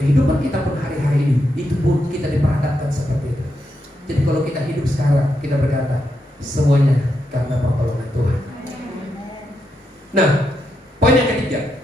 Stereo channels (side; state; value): both; normal; correlation 0.83